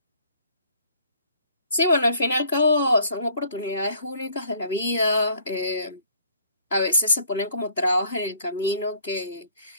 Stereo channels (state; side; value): inverted; both; correlation -0.59